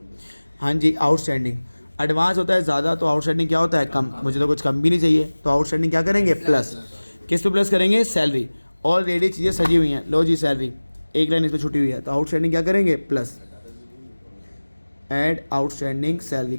हाँ जी, आउटस्टैंडिंग। एडवांस होता है ज़्यादा तो आउटस्टैंडिंग क्या होता है? कम। मुझे तो कुछ कम भी नहीं चाहिए तो आउटस्टैंडिंग क्या करेंगे? प्लस। किस पे प्लस करेंगे? सैलरी। ऑलरेडी चीज़ें सजी हुई हैं, लो जी सैलरी, एक लाइन इस पर छुटी हुई है तो आउटस्टैंडिंग क्या करेंगे? प्लस। Add outstanding salary.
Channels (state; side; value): inverted; both; correlation -1.00